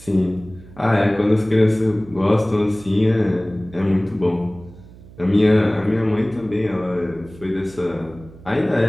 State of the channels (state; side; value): noise; right; hum, 20 dB below the sound